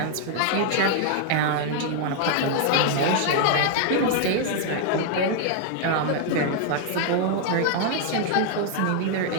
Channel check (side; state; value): both; different; correlation 0.00